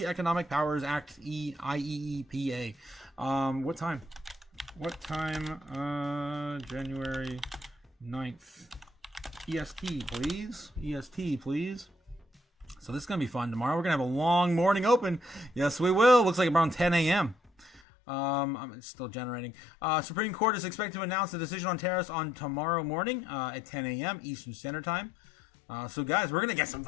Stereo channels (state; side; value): drops out; right; at 17.8 s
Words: Economic Powers Act, IEEPA. What time? January 9th. EST, please. EST, please. So this is going to be fun. Tomorrow we're going to have a long morning open. Yes, we will. Looks like around 10 a.m. I'm still generating. Supreme Court is expected to announce the decision on tariffs on tomorrow morning at 10 a.m. Eastern Standard Time. So guys, we're gonna get some